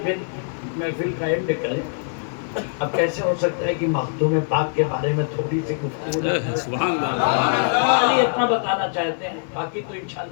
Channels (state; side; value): silent; right; 57 dB below the other